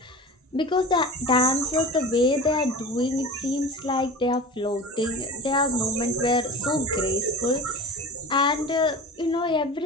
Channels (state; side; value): normal; both; correlation 0.34